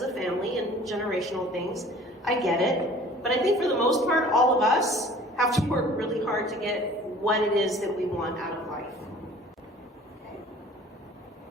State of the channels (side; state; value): both; normal; correlation 0.48